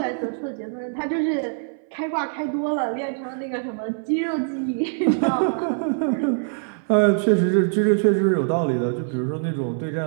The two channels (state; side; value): silent; left; 59 dB below the other